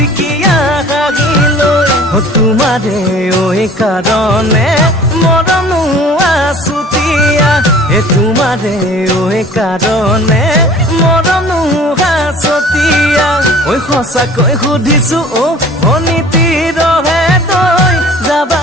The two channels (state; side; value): normal; both; correlation 0.47